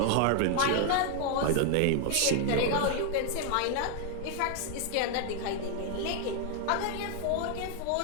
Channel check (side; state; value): both; different; correlation 0.01